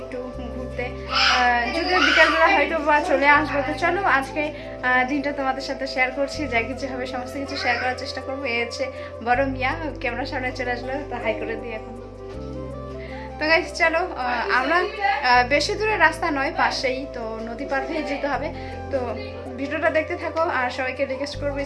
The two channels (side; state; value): both; identical; correlation 1.00